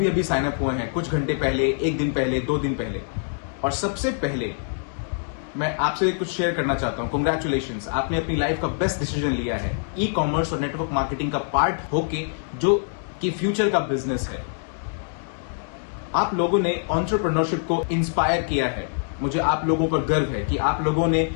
अभी साइन अप हुए हैं, कुछ घंटे पहले, एक दिन पहले, 2 दिन पहले। और सबसे पहले मैं आपसे कुछ शेयर करना चाहता हूं। कांग्रेचुलेशंस, आपने अपनी लाइफ का बेस्ट डिसीजन लिया है, ई कॉमर्स और नेटवर्क मार्केटिंग का पार्ट होके, जो कि फ्यूचर का बिजनेस है। आप लोगों ने एंटरप्रेन्योरशिप को इंस्पायर किया है। मुझे आप लोगों पर गर्व है कि आप लोगों ने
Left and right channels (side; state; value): right; silent; digital silence